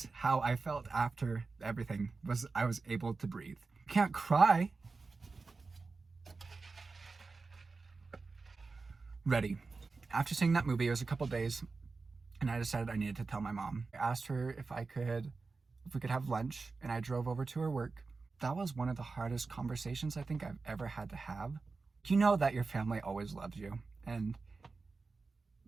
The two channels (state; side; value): quieter; left; 4.1 dB